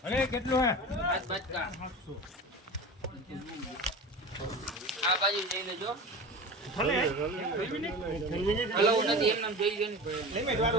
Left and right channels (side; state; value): both; normal; correlation 0.32